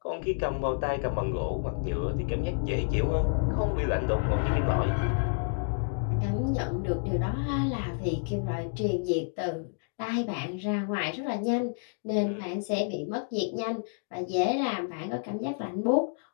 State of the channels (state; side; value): silent; right; digital silence